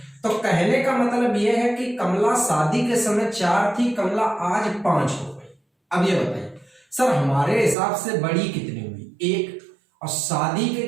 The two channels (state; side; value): drops out; left; at 7.8 s